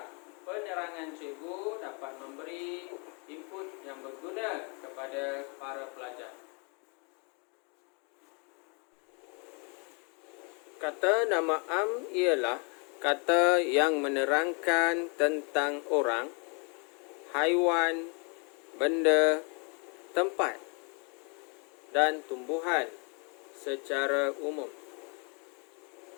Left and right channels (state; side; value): quieter; right; 35.4 dB